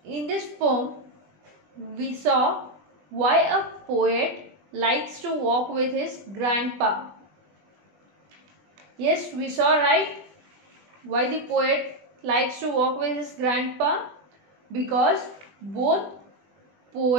In this poem, we saw why a poet likes to walk with his grandpa. Yes, we saw, right? Why the poet likes to walk with his grandpa? Because both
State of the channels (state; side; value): late; left; 20 ms